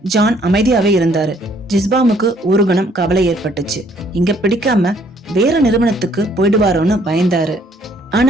ஜான் அமைதியாவே இருந்தாரு. ஜிஸ்பாமுக்கு ஒரு கணம் கவலை ஏற்பட்டுச்சு. இங்க பிடிக்காம வேற நிறுவனத்துக்கு போயிடுவாரோன்னு பயந்தாரு.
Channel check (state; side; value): normal; both; correlation 0.64